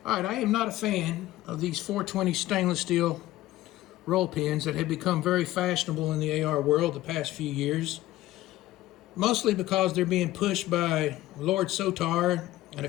Alright, I am not a fan of these 420 stainless steel roll pins that have become very fashionable in the AR world the past few years. Mostly because they're being pushed by Lord Sotar and a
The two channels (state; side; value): quieter; right; 16.0 dB